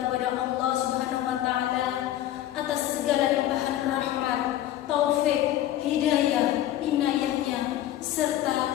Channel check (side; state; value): right; quieter; 13.0 dB